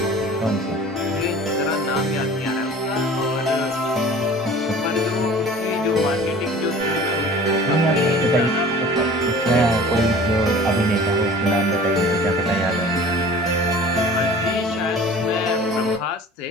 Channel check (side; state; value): both; normal; correlation 0.44